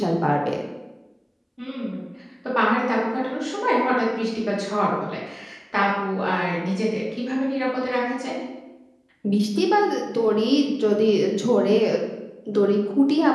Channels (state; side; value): identical; both; correlation 1.00